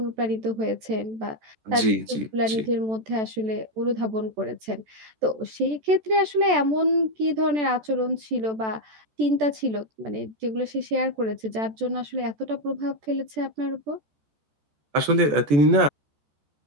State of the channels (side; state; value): left; late; 14 ms